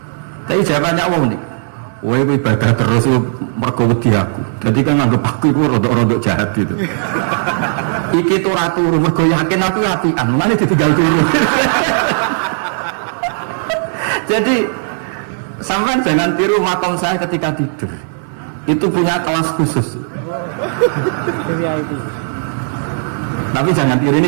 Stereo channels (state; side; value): silent; left; 65 dB below the other